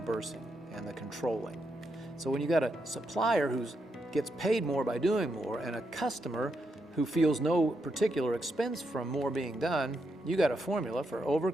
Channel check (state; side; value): normal; both; correlation 0.82